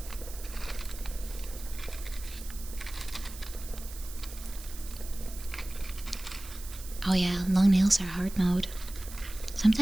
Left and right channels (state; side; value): noise; right; hiss, 14 dB below the sound